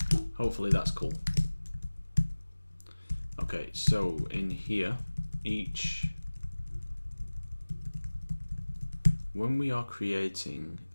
Hopefully that's cool. Okay, so in here, when we are creating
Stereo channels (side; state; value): both; inverted; correlation -1.00